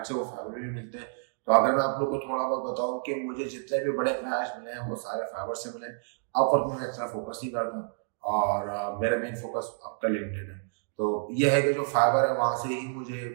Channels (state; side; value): silent; left; digital silence